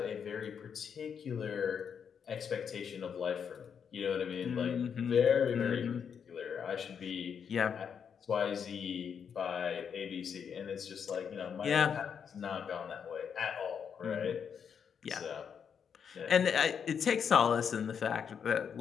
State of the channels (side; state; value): right; quieter; 7.2 dB